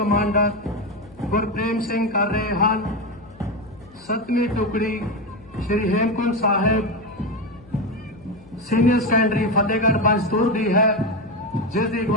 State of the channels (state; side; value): noise; left; hum, 24 dB below the sound